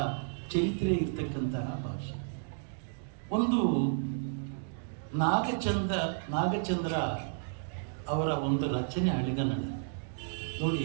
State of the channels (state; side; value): silent; left; digital silence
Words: ಚರಿತ್ರೆ ಇರ್ತಕ್ಕಂತಹ ಭಾಷೆ. ಒಂದು ನಾಗಚಂದ್ರ ಅವರ ಒಂದು ರಚನೆ ಹಳೆಗನ್ನಡ